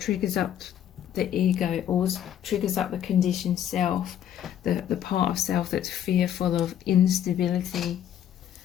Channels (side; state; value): right; quieter; 10.4 dB